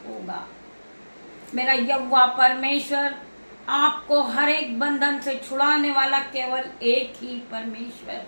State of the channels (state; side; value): inverted; both; correlation -1.00